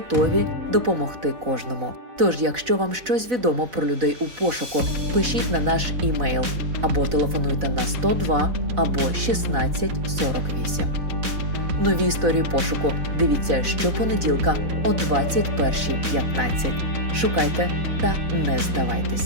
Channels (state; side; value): late; left; 4.0 ms